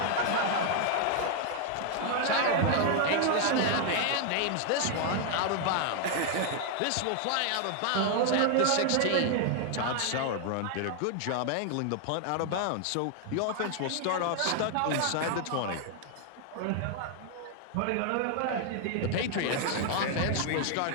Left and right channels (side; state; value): both; different; correlation 0.00